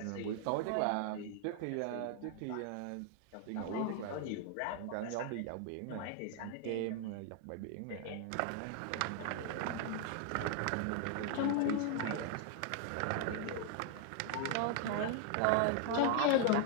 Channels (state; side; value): different; both; correlation 0.00